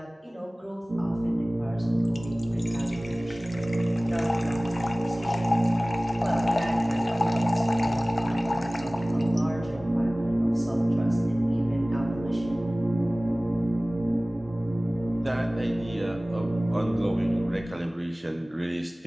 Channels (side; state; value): both; normal; correlation 0.98